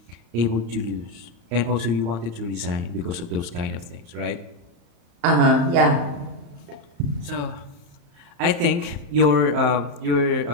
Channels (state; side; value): late; left; 35 ms